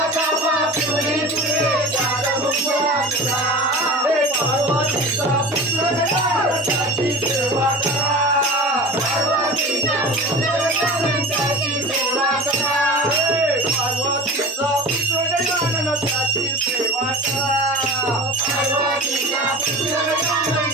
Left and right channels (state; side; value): normal; both; correlation 0.35